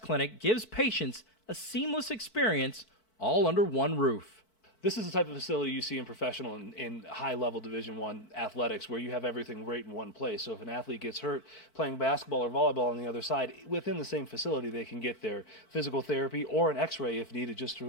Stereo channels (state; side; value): late; right; 4.5 ms